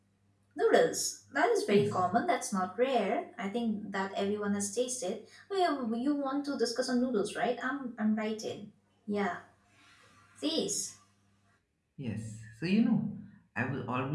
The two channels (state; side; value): identical; both; correlation 1.00